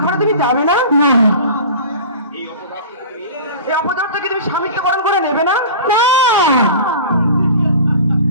ঘরে তুমি যাবে না? এই অপদার্থকে তুমি স্বামিত্বকরণ করে নেবে না?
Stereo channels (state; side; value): inverted; both; correlation -0.37